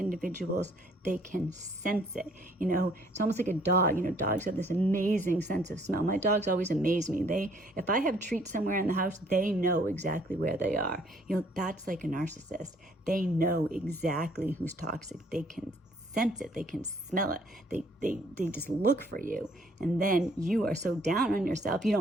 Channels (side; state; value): both; normal; correlation 0.62